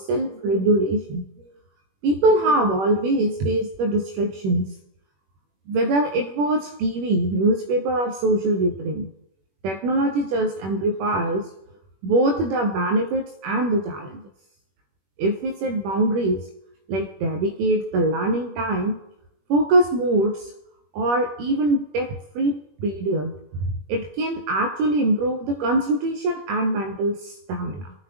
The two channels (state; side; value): late; left; 21 ms